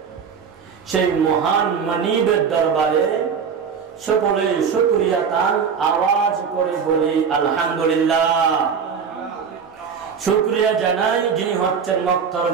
সেই মহান মানিবের দরবারে সকলে শুকরিয়া তান আওয়াজ করে বলি আলহামদুলিল্লাহ। শুকরিয়া জানাই যিনি হচ্ছেন মক্কার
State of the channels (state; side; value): quieter; left; 6.6 dB